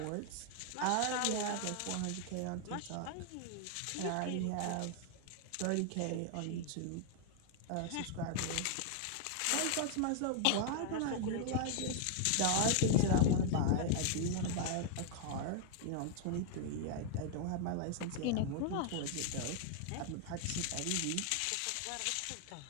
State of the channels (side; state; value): both; different; correlation 0.00